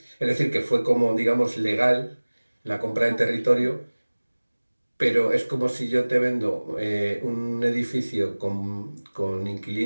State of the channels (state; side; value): inverted; both; correlation -1.00